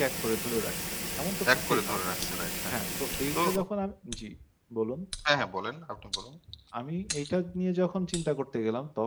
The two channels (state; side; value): identical; both; correlation 1.00